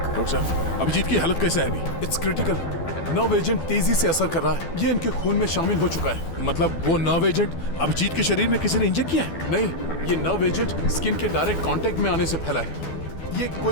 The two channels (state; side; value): late; right; 12 ms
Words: डॉक्टर साहब, अभिजीत की हालत कैसे है अभी? It's critical. नर्व एजेंट तेजी से असर कर रहा है। ये इनके खून में शामिल हो चुका है। मतलब वो नर्व एजेंट अभिजीत के शरीर में किसी ने इंजेक्ट किया है? नहीं, ये नर्व एजेंट स्किन के डायरेक्ट कांटेक्ट में आने से फैला है। ये